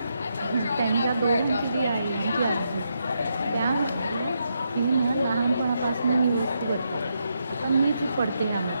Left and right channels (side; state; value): both; inverted; correlation -0.81